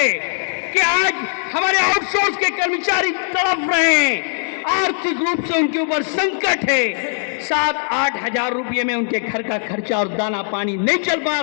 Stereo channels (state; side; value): silent; right; digital silence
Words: कि आज हमारे आउटसोर्स के कर्मचारी तड़प रहे हैं, आर्थिक रूप से उनके ऊपर संकट है, 7-8 हजार रुपये में उनके घर का खर्चा और दाना पानी नहीं चल पा